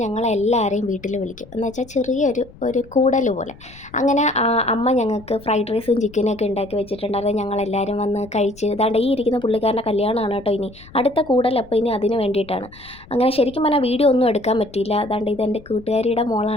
ഞങ്ങളെല്ലാവരെയും വീട്ടിൽ വിളിക്കും. എന്ന് വെച്ചാൽ ചെറിയൊരു കൂടൽ പോലെ. അങ്ങനെ അമ്മ ഞങ്ങൾക്ക് ഫ്രൈഡ് റൈസും ചിക്കനൊക്കെ ഉണ്ടാക്കി വെച്ചിട്ടുണ്ടായിരുന്നു. ഞങ്ങളെല്ലാവരും വന്ന് കഴിച്ച് ഇതാണ്ട് ഈ ഇരിക്കുന്ന പുള്ളിക്കാരൻ്റെ കല്യാണമാണ് കേട്ടോ ഇനി അടുത്ത കൂടൽ. അപ്പോൾ ഇനി അതിന് വേണ്ടിയിട്ടാണ്. അങ്ങനെ ശരിക്കും പറഞ്ഞാൽ വീഡിയോ ഒന്നും എടുക്കാൻ പറ്റിയില്ല. അതാണ്ട് ഇതെൻ്റെ കൂട്ടുകാരിയുടെ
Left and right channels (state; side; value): noise; left; rumble, 21 dB below the sound